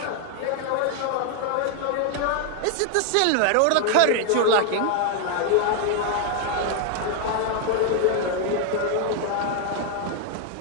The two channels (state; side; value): different; both; correlation 0.00